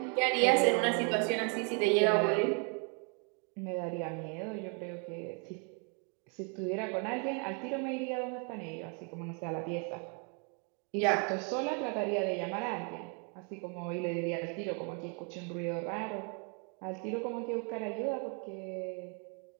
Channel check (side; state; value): left; quieter; 37.4 dB